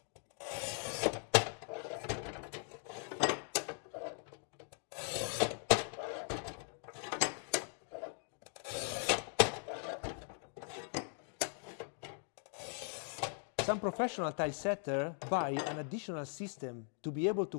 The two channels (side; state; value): right; silent; 51 dB below the other